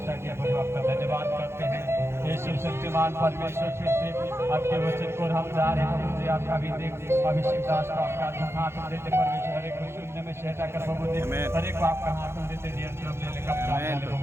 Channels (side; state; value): left; late; 0.12 ms